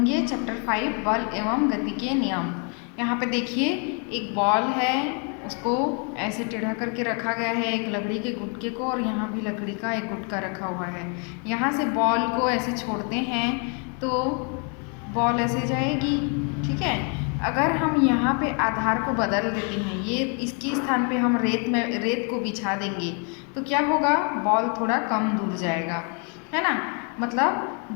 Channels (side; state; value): right; quieter; 38.0 dB